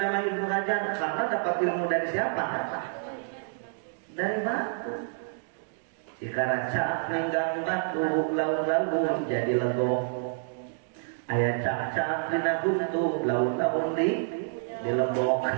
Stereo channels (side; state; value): left; silent; digital silence